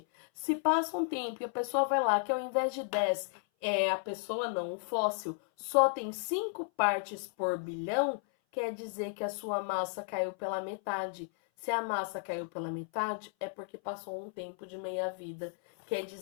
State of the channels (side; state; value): right; silent; 55 dB below the other